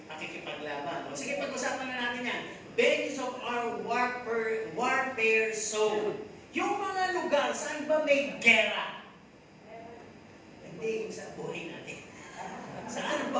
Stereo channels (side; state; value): both; identical; correlation 1.00